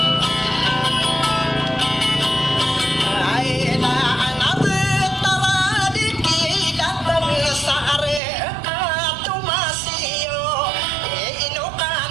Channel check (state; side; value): drops out; left; at 8.2 s